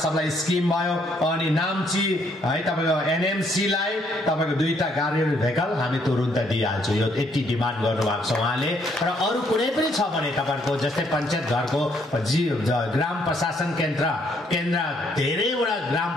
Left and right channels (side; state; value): both; normal; correlation 0.69